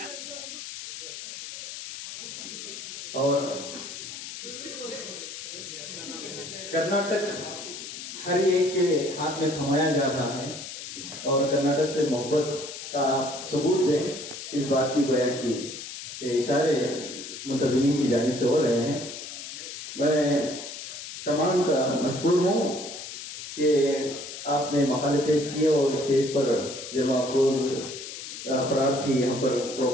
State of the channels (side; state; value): left; noise; hiss, 10 dB below the sound